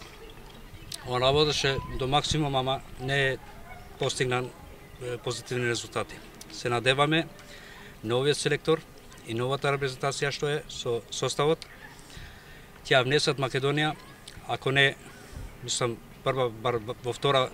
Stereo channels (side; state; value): both; identical; correlation 1.00